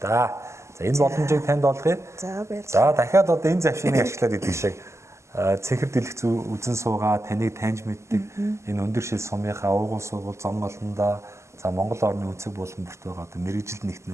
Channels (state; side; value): late; left; 0.13 ms